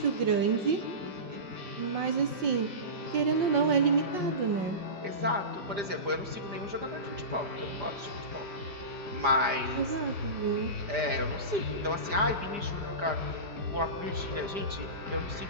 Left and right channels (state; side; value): late; left; 4.9 ms